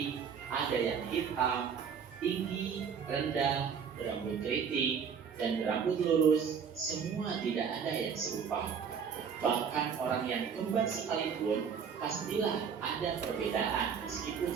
ada yang hitam, tinggi, rendah, berambut keriting, dan berambut lurus. Semua tidak ada yang serupa. Bahkan orang yang kembar sekalipun pastilah ada perbedaan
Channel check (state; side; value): quieter; left; 6.9 dB